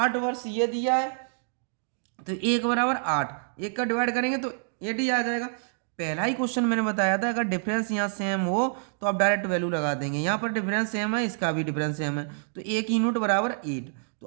वर्ष ये दिया है, तो 1 बराबर 8, 1 का डिवाइड करेंगे तो 8 ही आ जाएगा। पहला ही क्वेश्चन मैंने बताया था, अगर डिफरेंस यहाँ सेम हो तो आप डायरेक्ट वैल्यू लगा देंगे, यहाँ पर डिफरेंस सेम है, इसका भी डिफरेंस सेम है, तो ए की यूनिट बराबर 8।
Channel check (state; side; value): silent; left; digital silence